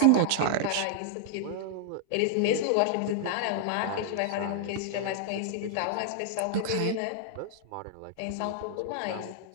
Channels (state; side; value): different; both; correlation -0.01